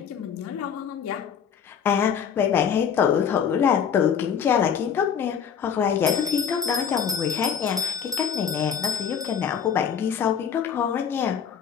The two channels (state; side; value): quieter; right; 7.6 dB